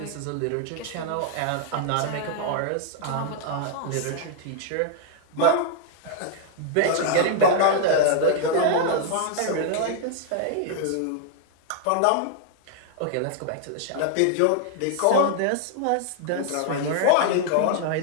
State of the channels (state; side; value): different; both; correlation -0.01